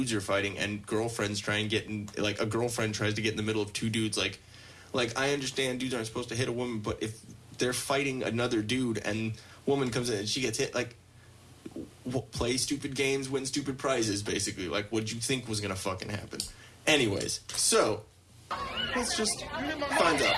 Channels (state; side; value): identical; both; correlation 1.00